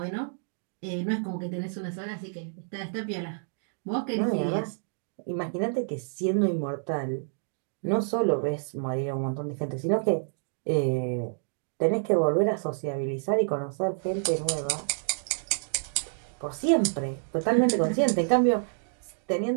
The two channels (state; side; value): silent; left; digital silence